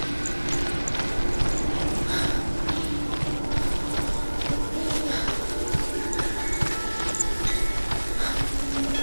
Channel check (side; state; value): both; inverted; correlation -1.00